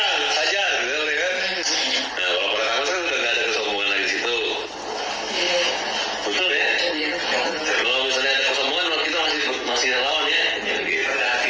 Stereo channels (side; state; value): both; identical; correlation 1.00